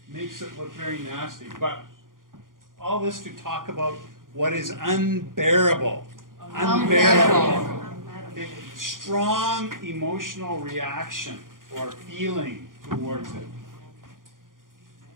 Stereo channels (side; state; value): left; late; 0.90 ms